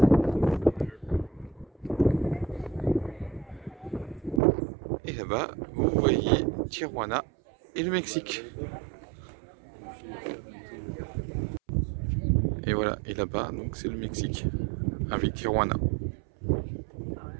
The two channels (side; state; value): left; drops out; at 4.4 s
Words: Et là-bas, vous voyez Tijuana et le Mexique. Et voilà, et là-bas, donc c'est le Mexique, avec Tijuana.